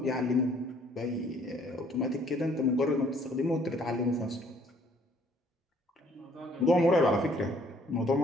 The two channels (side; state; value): both; normal; correlation 0.61